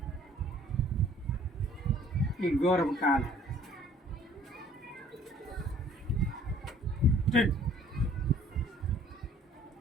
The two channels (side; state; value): both; normal; correlation 0.56